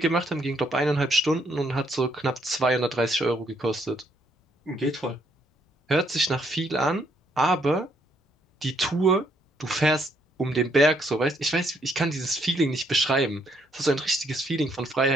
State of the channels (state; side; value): normal; both; correlation 0.71